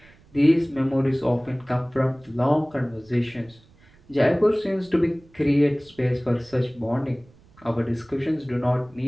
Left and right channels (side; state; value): right; noise; rumble, 28 dB below the sound